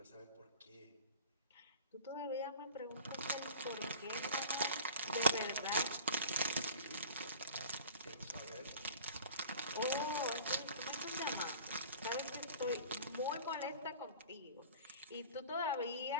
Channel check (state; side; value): inverted; both; correlation -0.41